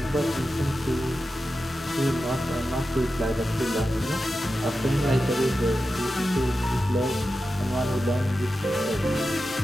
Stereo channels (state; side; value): normal; both; correlation 0.91